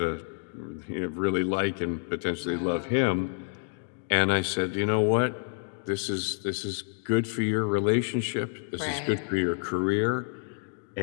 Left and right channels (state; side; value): silent; right; digital silence